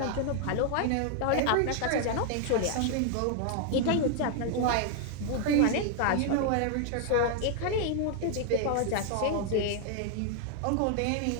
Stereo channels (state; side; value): different; both; correlation 0.00